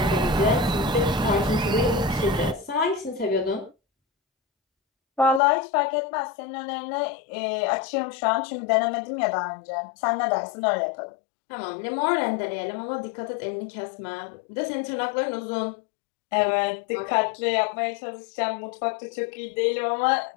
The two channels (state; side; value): drops out; right; at 5.4 s